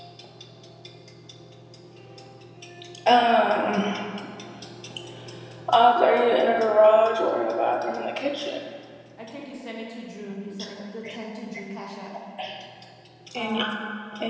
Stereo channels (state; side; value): identical; both; correlation 1.00